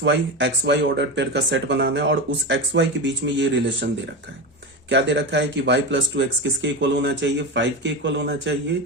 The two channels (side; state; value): both; normal; correlation 0.20